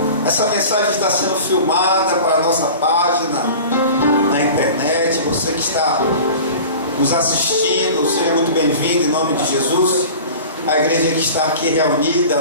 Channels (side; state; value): both; inverted; correlation -0.39